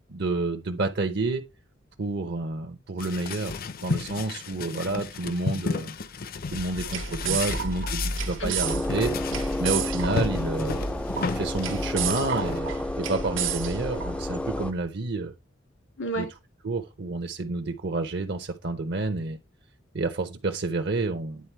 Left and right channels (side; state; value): both; normal; correlation 0.44